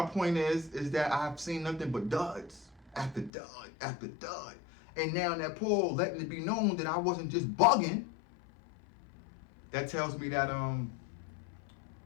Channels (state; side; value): drops out; right; at 3.3 s